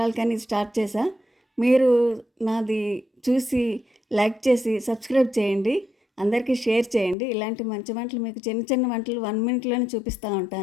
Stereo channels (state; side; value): drops out; right; at 7.2 s